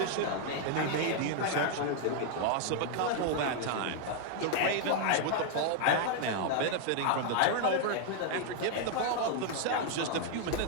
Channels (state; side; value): different; both; correlation 0.00